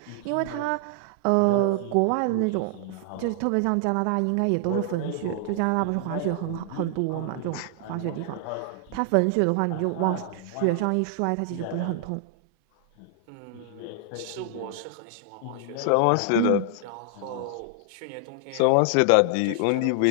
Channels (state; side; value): different; both; correlation 0.00